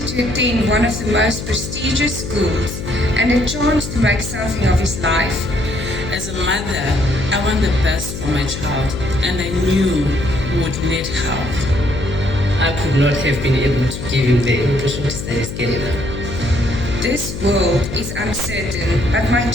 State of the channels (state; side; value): noise; left; hum, 7 dB below the sound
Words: to attend one of the most prestigious schools and a chance to make something of his life. As a mother, I want the best for my child, and I knew who would need help. I could not have been able to give him the opportunity that is Canada. This world is uncertain, but my